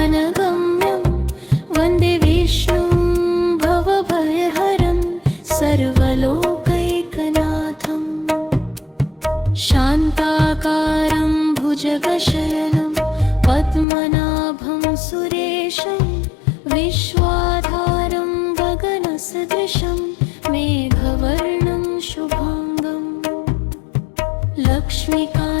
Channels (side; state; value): right; drops out; at 13.9 s